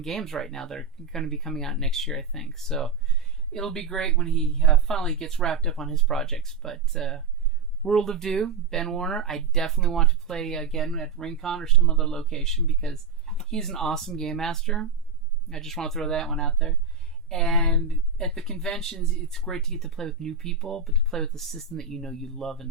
games right now that are going to be coming out next year, I think. So it'll be great when he finally gets wrapped up on his projects. But World of Do, Ben Warner, I definitely want to play again at Rincon or some other location because he's an awesome game master. I just want to throw that one out there. And at the conventions, it's great to get to play with new people, but to play with a system that you love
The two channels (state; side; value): quieter; left; 5.1 dB